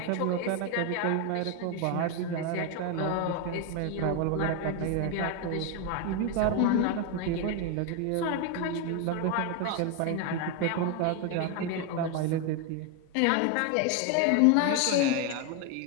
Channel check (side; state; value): both; different; correlation 0.01